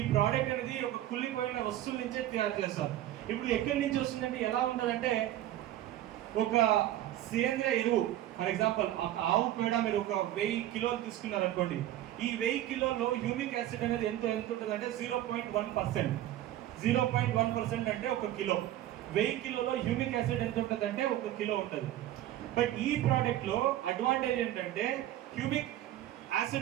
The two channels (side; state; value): left; quieter; 13.4 dB